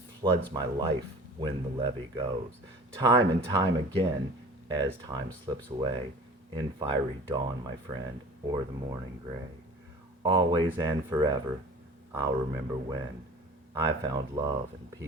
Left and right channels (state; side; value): normal; both; correlation 0.43